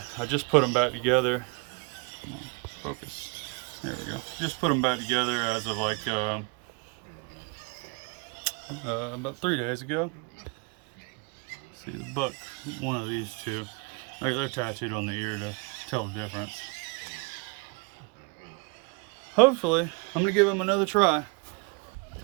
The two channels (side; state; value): left; quieter; 30.0 dB